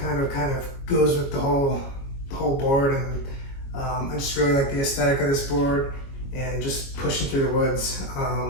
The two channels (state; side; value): late; right; 22 ms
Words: of goes with the whole board, and I just really like the aesthetic of this board and just pushing through the woods.